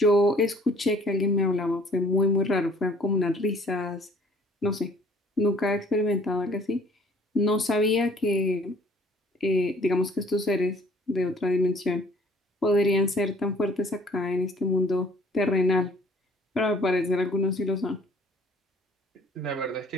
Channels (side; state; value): both; normal; correlation 0.56